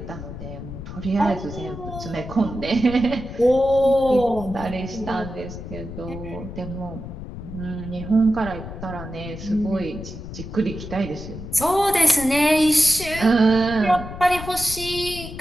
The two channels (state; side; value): noise; left; rumble, 10 dB below the sound